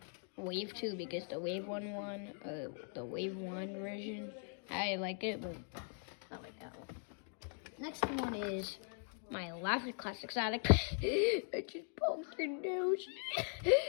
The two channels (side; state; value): right; silent; 51 dB below the other